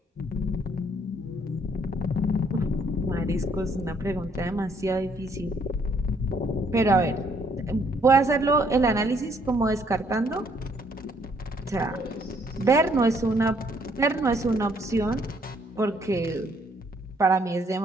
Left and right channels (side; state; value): both; normal; correlation 0.67